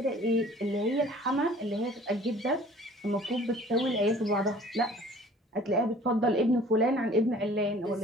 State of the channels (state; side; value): normal; both; correlation 0.50